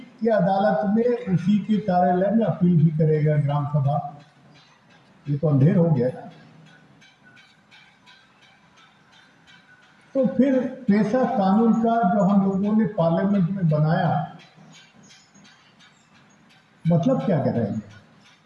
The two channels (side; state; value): both; identical; correlation 1.00